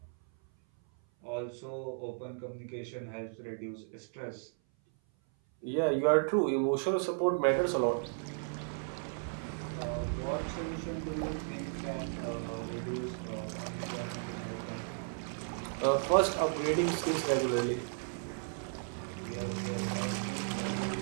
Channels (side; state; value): left; silent; 55 dB below the other